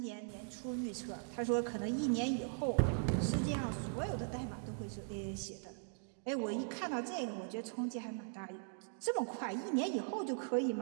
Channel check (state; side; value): silent; left; digital silence